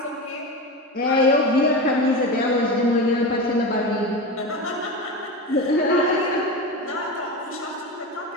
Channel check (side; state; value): both; normal; correlation 0.23